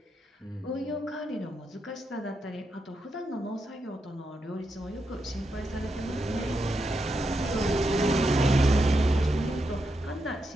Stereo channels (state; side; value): normal; both; correlation 0.85